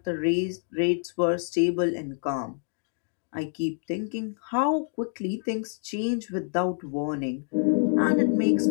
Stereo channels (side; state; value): right; silent; digital silence